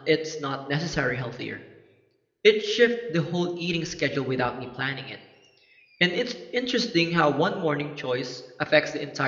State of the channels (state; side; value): identical; both; correlation 1.00